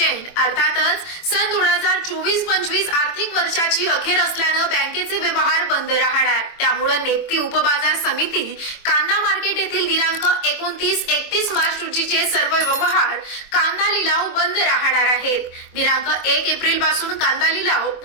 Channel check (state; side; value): late; right; 24 ms